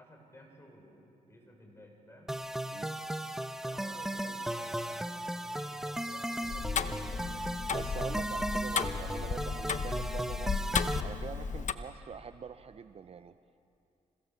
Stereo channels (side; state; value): both; normal; correlation 0.68